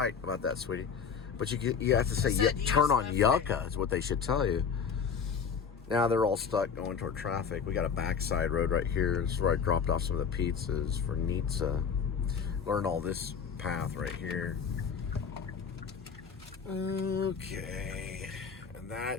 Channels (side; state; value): right; quieter; 6.5 dB